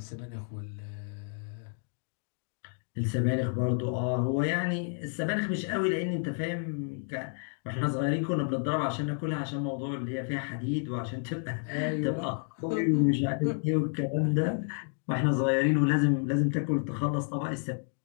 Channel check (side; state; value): right; silent; 57 dB below the other